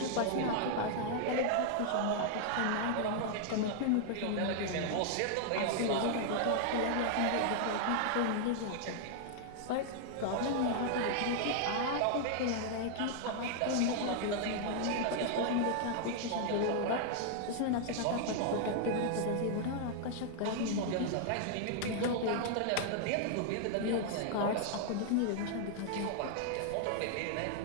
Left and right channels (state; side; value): different; both; correlation 0.00